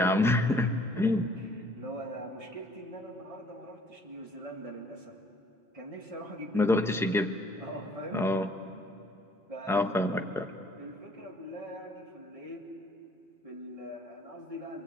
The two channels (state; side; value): normal; both; correlation 0.60